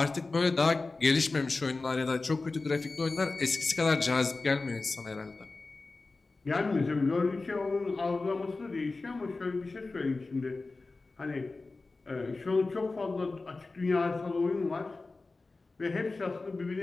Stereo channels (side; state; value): right; quieter; 3.6 dB